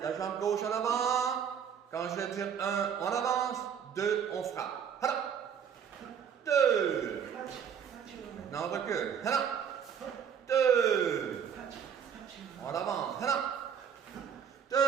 La jambe gauche en avant. Quand je vais dire 1, on avance. 2, on frappe. 2. Maintenant, on recule. 2. On avance. 2.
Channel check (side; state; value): left; quieter; 7.8 dB